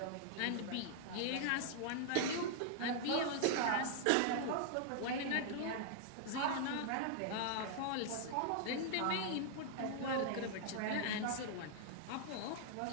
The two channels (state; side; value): different; both; correlation -0.01